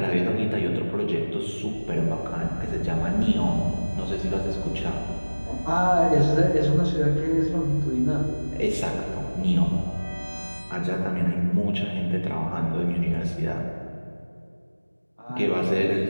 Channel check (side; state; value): both; inverted; correlation -1.00